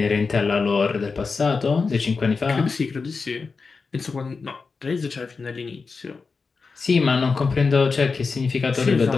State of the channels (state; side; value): quieter; right; 4.6 dB